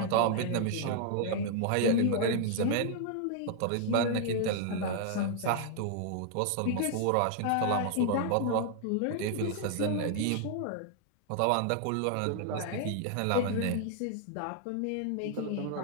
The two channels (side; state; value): both; different; correlation -0.01